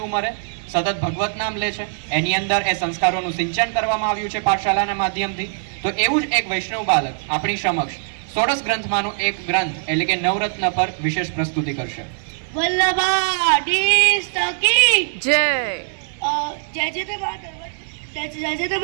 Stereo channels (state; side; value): silent; left; digital silence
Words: ઉંમરે સતત ભગવત નામ લે છે, એની અંદર એ સંસ્કારોનું સિંચન કરવામાં આવ્યું છે પાઠશાલાના માધ્યમથી. તો એવું જ એક વૈષ્ણવ બાળક આપણી સમક્ષ 16 ગ્રંથમાંનો એક ગ્રંથ એટલે કે નવરત્ન પર વિશેષ પ્રસ્તુતિ કરશે. વલ્લભાધીશ કી જય. જય જય નર્મદ